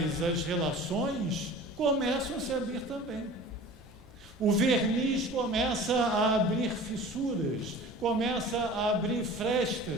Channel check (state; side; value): normal; both; correlation 0.41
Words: as relações começam a se abrir também. O verniz começa a abrir fissuras, começa a abrir